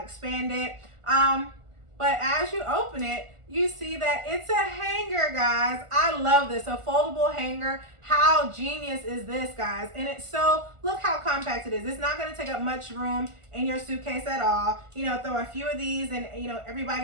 expand it. But as you open it, you see that it's a hanger, guys. I love this, a foldable hanger. How genius is this, guys? And it's so, look how compact it is. It's not gonna take up much room in your suitcase at all. You know, throw a few of these in, you know,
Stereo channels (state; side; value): late; left; 1.4 ms